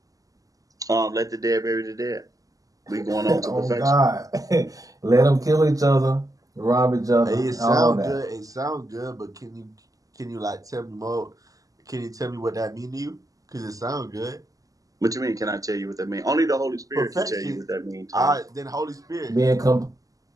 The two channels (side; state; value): left; late; 0.17 ms